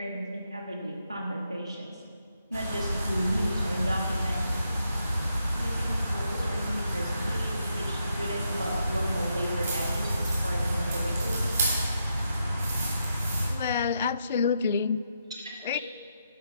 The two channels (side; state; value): both; inverted; correlation -0.81